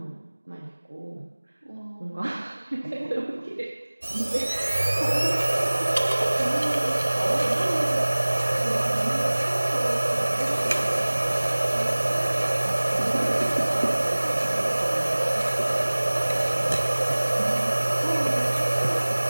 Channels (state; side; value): inverted; both; correlation -1.00